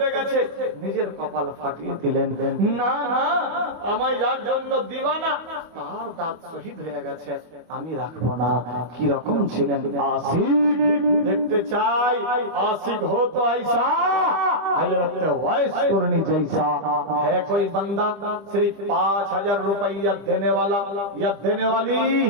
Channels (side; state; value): left; late; 25 ms